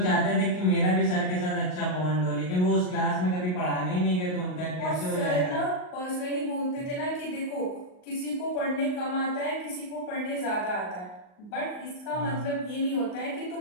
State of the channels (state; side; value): late; right; 38 ms